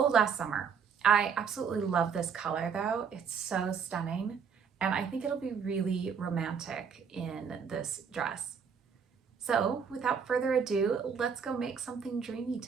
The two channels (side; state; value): left; quieter; 6.6 dB